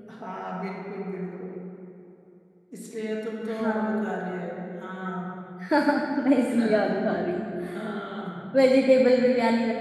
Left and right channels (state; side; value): identical; both; correlation 1.00